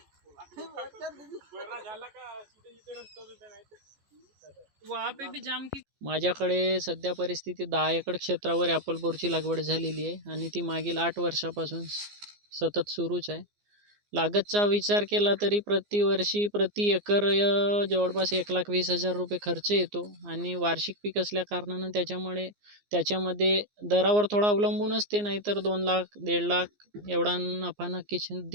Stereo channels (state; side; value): late; left; 14 ms